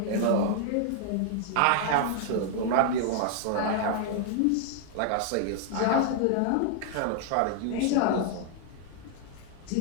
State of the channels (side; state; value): both; different; correlation 0.00